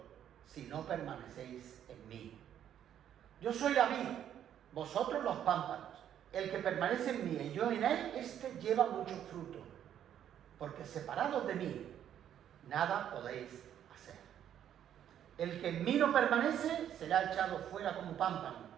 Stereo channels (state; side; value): quieter; left; 10.1 dB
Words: si no permanecéis en mí. Yo soy la vid, vosotros los pámpanos. El que permanece en mí y yo en él, éste lleva mucho fruto, porque separados de mí, nada podéis hacer. El que en mí no permanece será echado fuera como pámpano